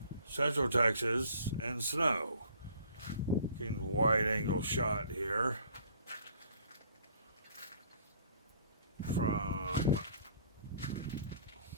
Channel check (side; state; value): both; inverted; correlation -0.56